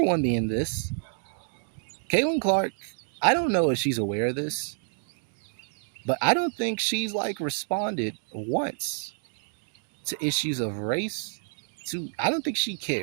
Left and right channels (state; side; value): silent; left; 58 dB below the other